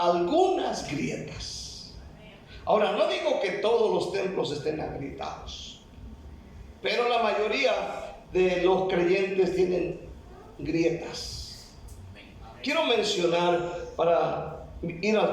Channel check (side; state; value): both; identical; correlation 1.00